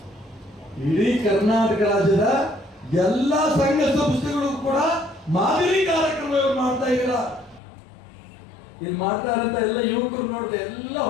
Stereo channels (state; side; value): drops out; right; at 7.6 s